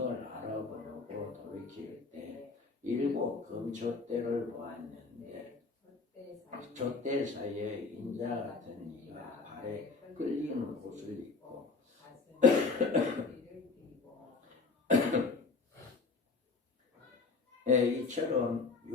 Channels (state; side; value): quieter; right; 4.3 dB